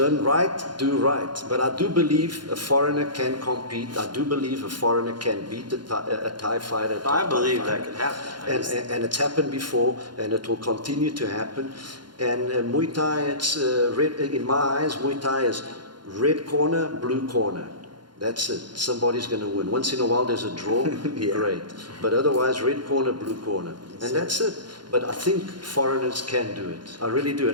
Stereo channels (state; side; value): late; left; 0.71 ms